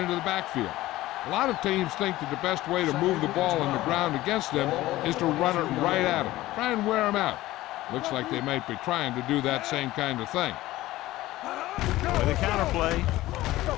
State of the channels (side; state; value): right; quieter; 16.7 dB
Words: the backfield. A lot of teams think that the best way to move the ball on the ground against them is to run it right at them. Try and wear them out. Looks like they might be trying to do that same kind of thing. With a counter play.